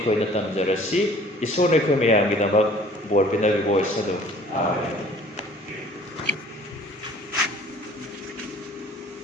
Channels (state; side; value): normal; both; correlation 0.52